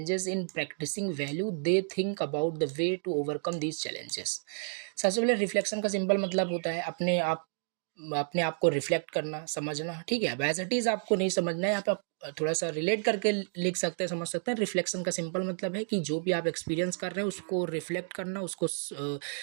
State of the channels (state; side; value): silent; left; digital silence